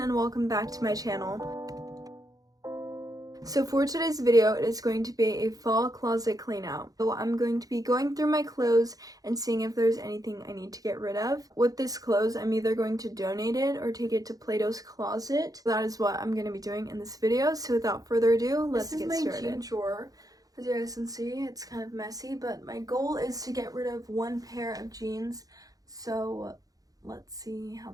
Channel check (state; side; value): late; left; 0.18 ms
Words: and welcome back to my channel. So for today's video, it is going to be a fall closet clean out. So I'm going to be going through my clothes and seeing if there's anything I need to get rid of. With this clothes, I'm either going to donate it or take it to Plato's Closet. That is what I'm going to be doing in this video. So without further ado, let's get started. This is my jean drawer. As you guys can see, it's kind of messy, but my goal is to get rid of one pair of jeans. So let's see how